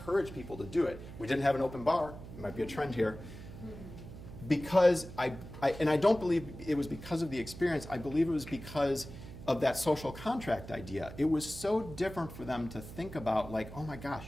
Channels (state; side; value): noise; right; hum, 13 dB below the sound